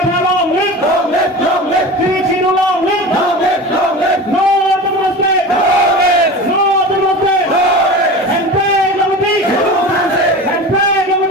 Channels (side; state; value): both; normal; correlation 0.32